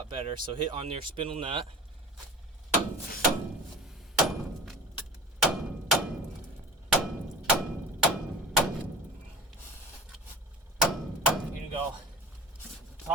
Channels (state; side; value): normal; both; correlation 0.38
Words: better. So hit on your spindle nut. You're gonna go